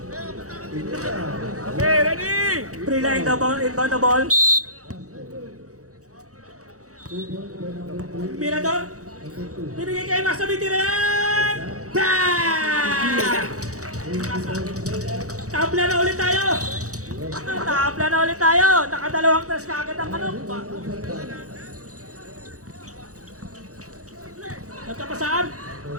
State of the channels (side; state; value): left; late; 0.66 ms